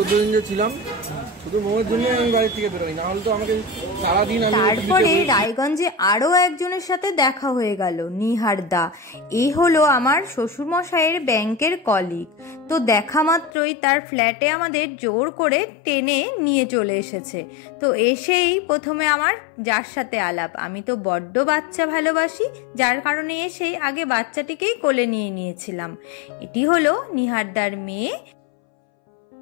দিন যে ছিলাম শুধু মোমের জন্য আমি বাড়ি থেকে বেরোই, না হলে তো আমাকে সারাদিন। তারপরে রায়গঞ্জে আরো একজনের সাথে দেখা হয়ে গেল, নিহার দা। এই হলো আমার শ্বশুর মশাইয়ের ব্যাংকের কলিগ। তো দেখা মাত্রই তার ফ্ল্যাটে আমাদের জোর করে টেনে নিয়ে চলে এসেছে। তো এসেই প্রথমে আমার যার সাথে আলাপ। আমি তো বড্ড বাচ্চা ভালোবাসি, যার কারণে এসেই আগে বাচ্চাটিকেই কোলে নিয়ে নিয়েছিলাম। এটি হলো নিহারদার মেয়ে,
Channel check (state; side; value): drops out; right; at 13.5 s